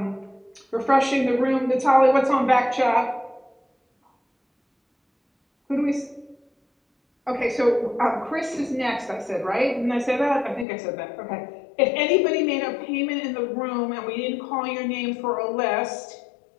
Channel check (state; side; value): drops out; right; at 10.7 s